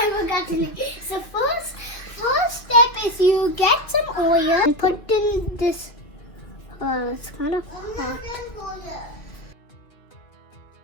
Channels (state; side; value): late; right; 2.4 ms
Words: forgot to make. So first step is you get some oil and put in this. It's kind of hot.